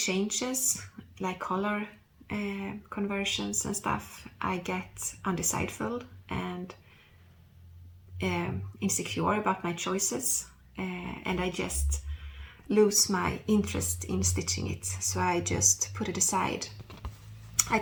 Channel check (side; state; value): both; identical; correlation 1.00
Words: like color conversions and stuff, I get undecideful and insecure about my choices, and I just lose my interest in stitching it, so I just put it aside. I